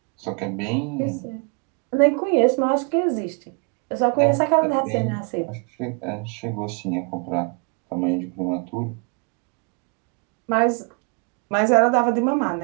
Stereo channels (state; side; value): quieter; left; 37.1 dB